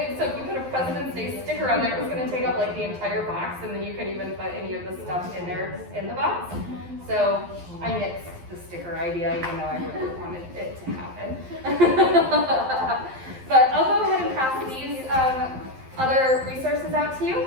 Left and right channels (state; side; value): late; left; 11 ms